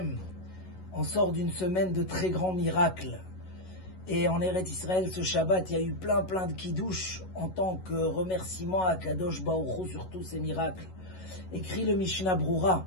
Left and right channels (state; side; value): late; right; 11 ms